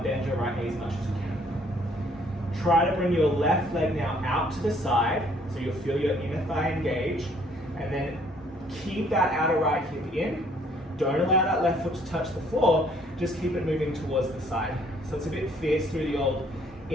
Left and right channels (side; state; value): both; normal; correlation 0.63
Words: bend your right knee as much as you can. Try to bring your left leg now out to the side, so you'll feel your inner thigh engage, and then keep that outer right hip in. Don't allow that left foot to touch the floor, just keep it moving towards the side. So it's a bit fierce through the old